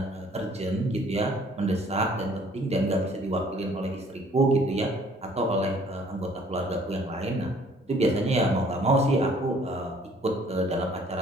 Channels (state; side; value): normal; both; correlation 0.58